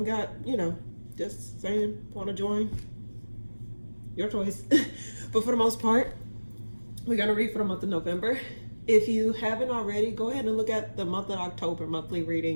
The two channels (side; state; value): both; inverted; correlation -1.00